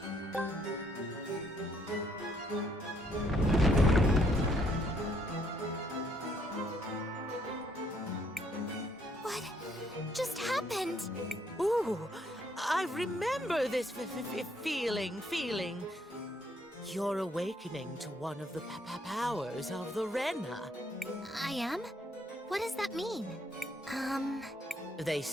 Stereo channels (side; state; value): both; normal; correlation 0.70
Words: What just happened? Ooh, I remember this feeling. You're awakening to one of the powers of the Renna. I am? What does that mean? They